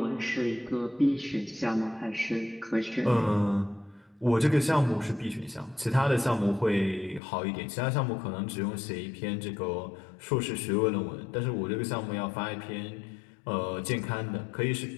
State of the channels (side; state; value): right; drops out; at 7.2 s